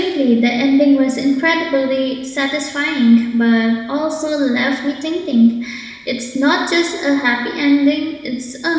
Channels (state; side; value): identical; both; correlation 1.00